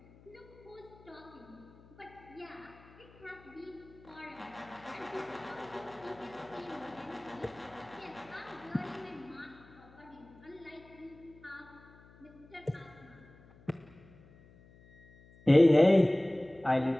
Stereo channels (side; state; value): left; noise; hum, 24 dB below the sound